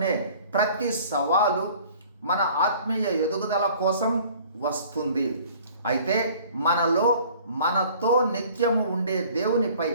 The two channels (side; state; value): both; inverted; correlation -0.51